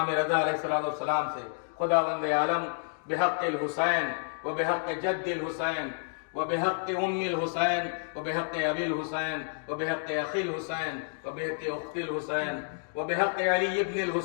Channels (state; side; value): silent; right; digital silence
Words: رضا علیہ السلام سے. خداوند عالم بحق الحسین و بحق جد الحسین و بحق ام الحسین و بحق ابی الحسین و بحق اخی الحسین و بحق اخت الحسین و بحق علی ابن